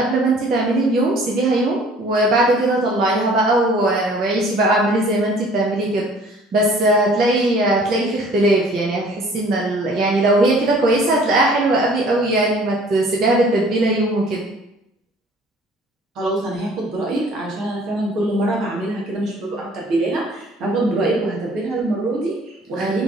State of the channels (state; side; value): normal; both; correlation 0.53